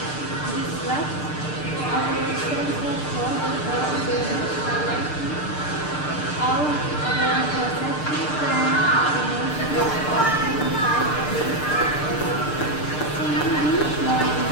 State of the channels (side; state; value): right; late; 6.7 ms